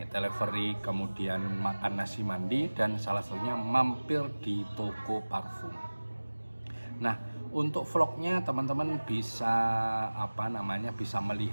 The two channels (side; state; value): both; inverted; correlation -1.00